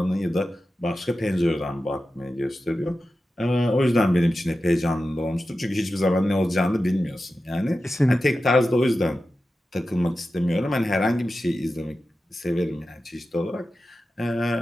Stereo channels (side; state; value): both; normal; correlation 0.92